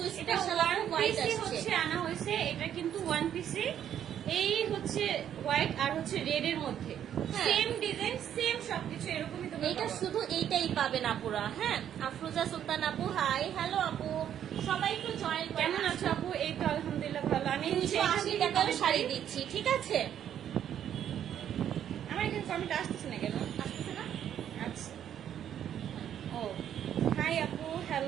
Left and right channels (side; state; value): left; quieter; 9.9 dB